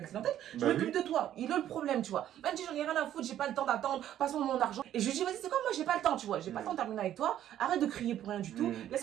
clientèle, je m'occupe de toi. Il a le problème, tu vois. Elle me dit, j'en ai rien à foutre, j'ai pas le temps d'attendre, passe-moi mon argent. Et je lui dis, vas-y, c'est quoi, moi j'ai pas le temps, tu vois. J'ai pas le temps de terminer avec toi, arrête de crier pour rien du tout,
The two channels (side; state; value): left; quieter; 11.6 dB